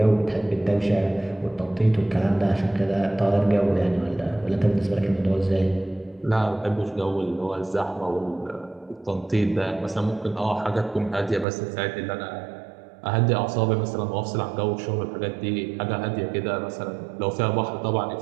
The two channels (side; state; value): left; drops out; at 11.5 s